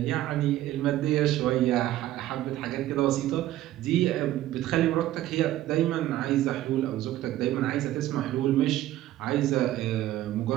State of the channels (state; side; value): quieter; left; 14.3 dB